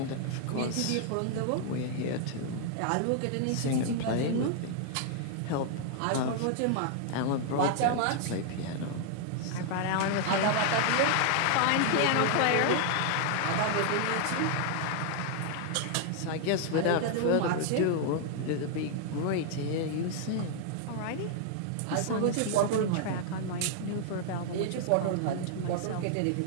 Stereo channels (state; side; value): different; both; correlation 0.00